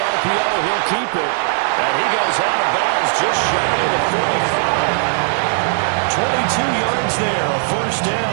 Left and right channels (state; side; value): silent; left; 63 dB below the other